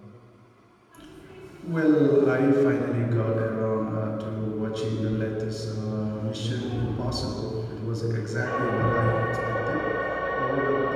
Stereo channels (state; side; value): identical; both; correlation 1.00